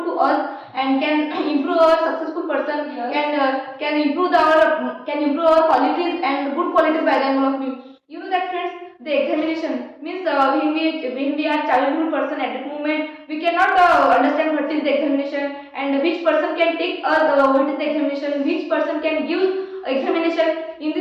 to us and can improve our successful person, can improve our qualities and good qualities by the end of me. You know that friends, the examination means when we are childhood person at that moment we cannot understand what is the examination and which person can take us what is the examination, which person can give examination. In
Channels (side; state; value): both; identical; correlation 1.00